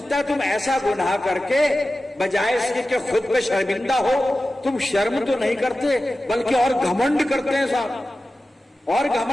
है तुम ऐसा गुनाह करके बजाय इसके कि खुद पे शर्मिंदा हो, तुम शर्म तो नहीं करते बल्कि और घमंड करते हैं साहब, और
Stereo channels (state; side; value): normal; both; correlation 0.94